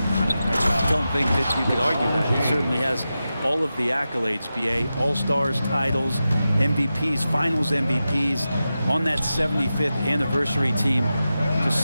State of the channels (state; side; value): inverted; both; correlation -0.92